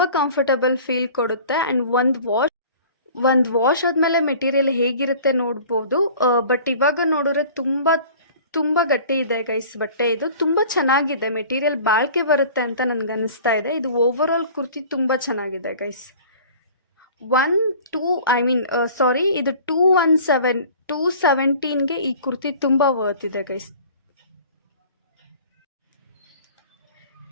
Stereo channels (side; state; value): both; inverted; correlation -0.45